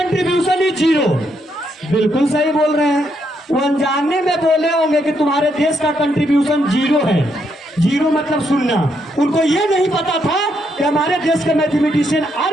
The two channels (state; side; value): normal; both; correlation 0.77